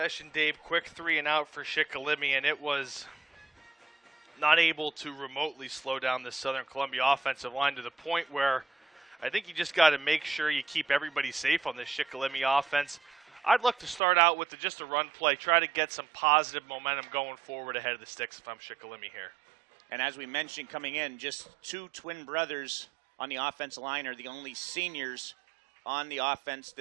Dave, quick 3-and-out for Shikellamy, and it was not able to remotely slow down the Southern Columbia offensive line to the point where I think you just got to make sure you keep everybody safe on this Shikellamy offense. I'd look to start out with just a run play, try to get some positive momentum going forward ahead of the sticks if I'm Shikellamy here. And as we mentioned coming in, just two twin brothers on the offensive line are the only seniors on the offense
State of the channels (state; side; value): drops out; left; at 14.0 s